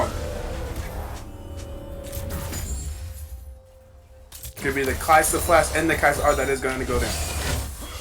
Could be the Kai'Sa flash and the Kai'Sa R that is going to go down.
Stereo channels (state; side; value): identical; both; correlation 1.00